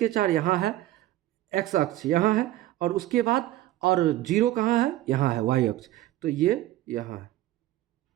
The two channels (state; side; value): quieter; left; 14.9 dB